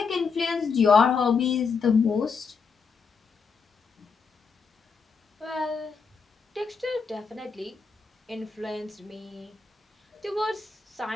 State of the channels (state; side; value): quieter; right; 5.3 dB